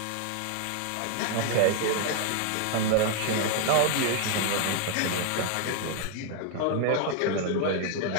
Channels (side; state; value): both; different; correlation 0.00